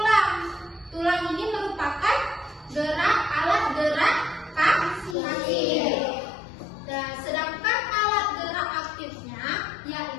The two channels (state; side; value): drops out; right; at 5.2 s